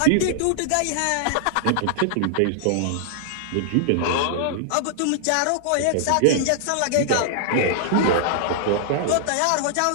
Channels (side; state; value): both; different; correlation -0.01